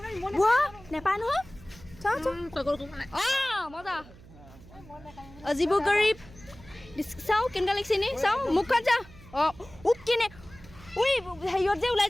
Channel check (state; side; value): noise; right; hum, 21 dB below the sound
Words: নেপায় নহয় মজা অজিবু গৰীব চাওঁ কেনেকুৱা লাগিছে নি চাওঁ মুখখন চা কেনে হেৰিয়ত যে ওলাই